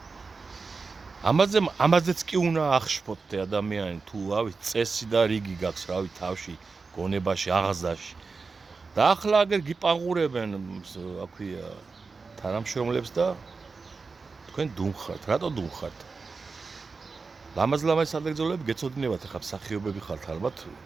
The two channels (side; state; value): left; quieter; 4.4 dB